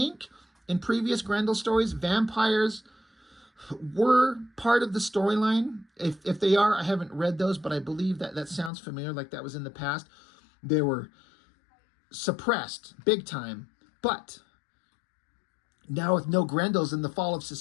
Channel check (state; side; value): drops out; right; at 8.7 s